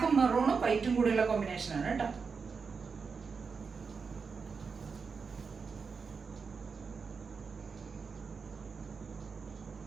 മെറൂണും വൈറ്റും കൂടിയുള്ള കോമ്പിനേഷനാണ് കേട്ടോ.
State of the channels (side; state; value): left; quieter; 5.3 dB